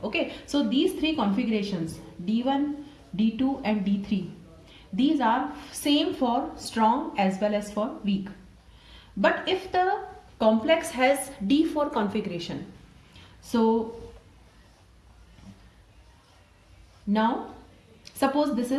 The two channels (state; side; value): identical; both; correlation 1.00